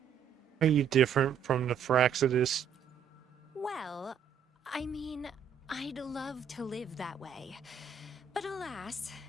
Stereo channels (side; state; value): left; quieter; 7.4 dB